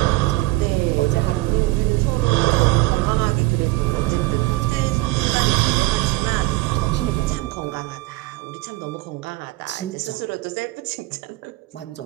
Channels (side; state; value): left; quieter; 20.3 dB